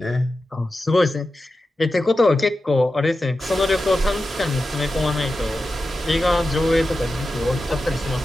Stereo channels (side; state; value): both; normal; correlation 0.92